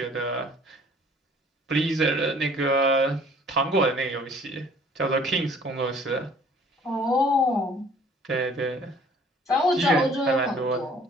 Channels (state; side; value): normal; both; correlation 0.54